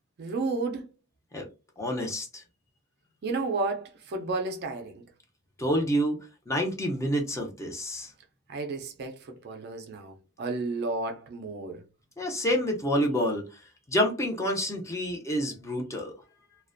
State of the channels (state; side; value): normal; both; correlation 0.36